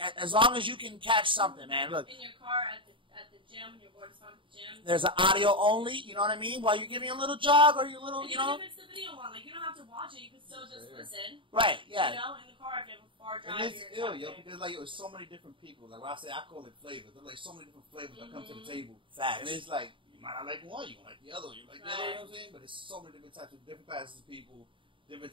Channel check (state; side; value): late; left; 0.25 ms